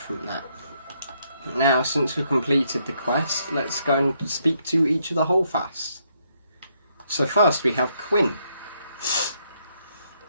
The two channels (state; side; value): inverted; both; correlation -0.73